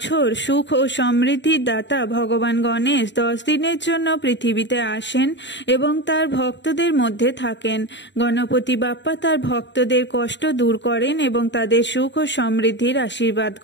সুখ ও সমৃদ্ধির দাতা ভগবান গণেশ 10 দিনের জন্য পৃথিবীতে আসেন এবং তার ভক্তদের মধ্যে থাকেন। গণপতি বাপ্পা তার ভক্তদের কষ্ট দূর করেন এবং তাদের সুখ ও সমৃদ্ধির আশীর্বাদ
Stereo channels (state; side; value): late; right; 0.52 ms